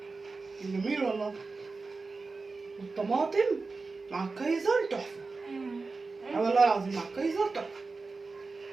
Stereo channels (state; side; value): quieter; left; 4.0 dB